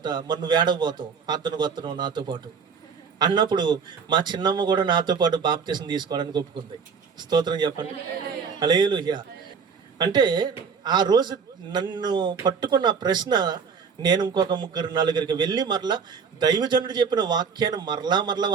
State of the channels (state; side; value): quieter; left; 6.0 dB